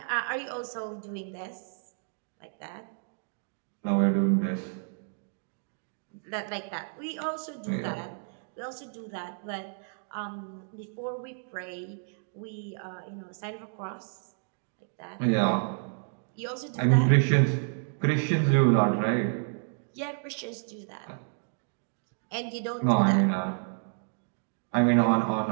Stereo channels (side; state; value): left; silent; digital silence